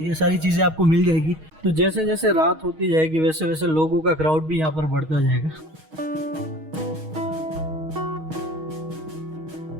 सारी चीजें आपको मिल जाएगी। तो जैसे जैसे रात होती जाएगी वैसे वैसे लोगों का क्राउड भी यहाँ पर बढ़ता जाएगा।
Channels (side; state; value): left; late; 6.4 ms